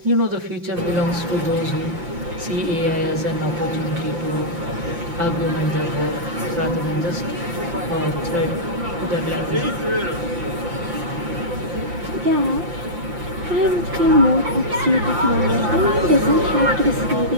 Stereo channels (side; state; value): left; late; 5.8 ms